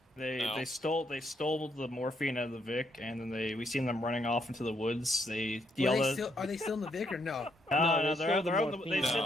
They stole the morphine out of the Vic, and then we seen them running off into the woods. They yelled Are they still in the Vic or no? No, they're out the morphine. They said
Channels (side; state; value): both; normal; correlation 0.74